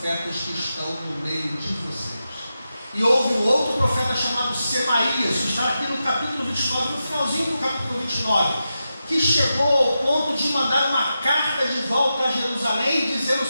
que estão no meio de vocês. E houve um outro profeta chamado Semaías, que está aqui no capítulo 29, no finalzinho do capítulo 29, que chegou ao ponto de mandar uma carta de volta a Jerusalém, dizendo o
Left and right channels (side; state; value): both; inverted; correlation -0.89